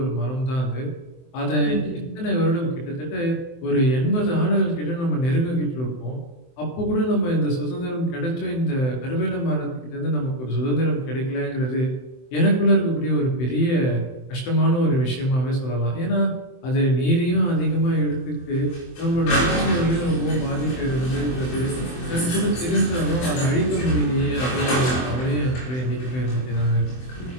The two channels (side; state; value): right; late; 23 ms